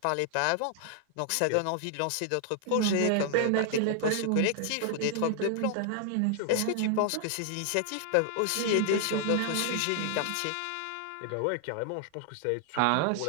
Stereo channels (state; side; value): different; both; correlation 0.00